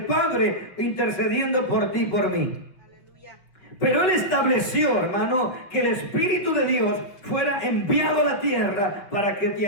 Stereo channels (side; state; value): right; late; 5.5 ms